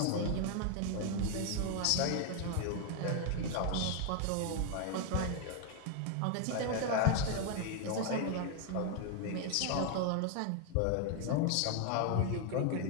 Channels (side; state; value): both; different; correlation 0.00